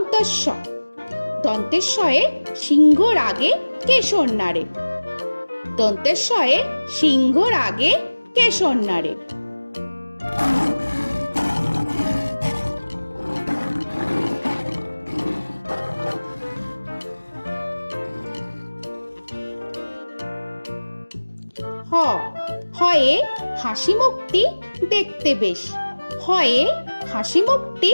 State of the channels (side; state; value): both; inverted; correlation -1.00